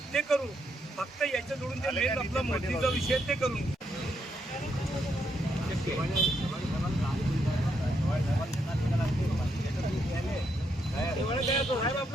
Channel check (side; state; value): both; normal; correlation 0.78